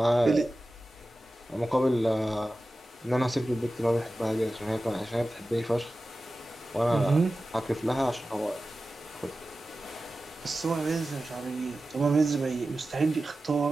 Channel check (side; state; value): both; normal; correlation 0.94